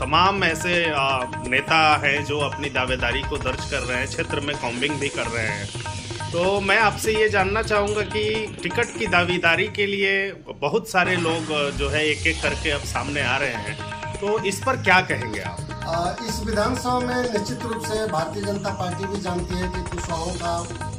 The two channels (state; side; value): identical; both; correlation 1.00